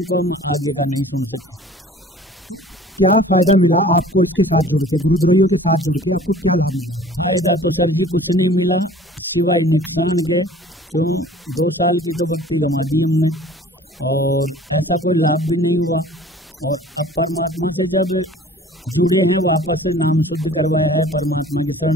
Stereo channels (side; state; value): both; normal; correlation 0.48